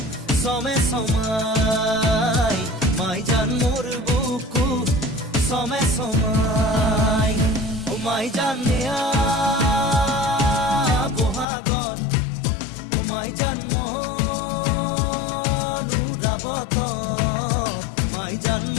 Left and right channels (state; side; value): drops out; right; at 11.5 s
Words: সমে সমাই, মাই জান মোর বুকু সমে সমাই। ও মাই জান নেয়া বহাগত, ও মাই জান